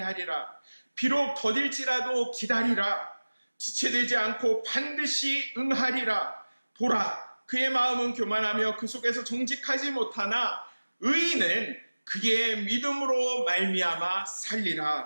비록 더딜지라도 기다리라. 지체되지 않고 반드시 응하리라. 보라, 그의 마음은 교만하며 그 속에서 정직하지 못하나 의인은 그의 믿음으로 말미암아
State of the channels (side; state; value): both; inverted; correlation -1.00